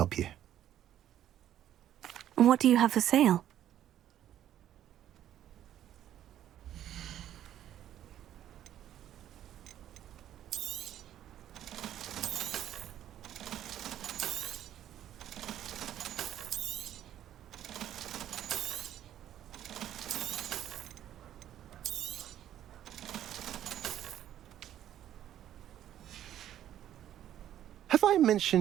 you? And what do you have for sale? Have I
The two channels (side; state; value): left; quieter; 11.5 dB